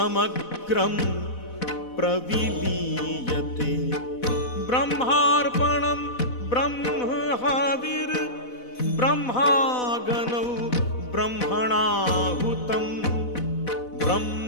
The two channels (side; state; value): right; late; 4.1 ms